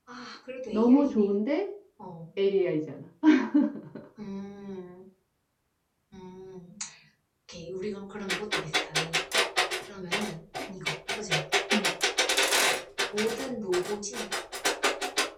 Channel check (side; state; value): both; identical; correlation 1.00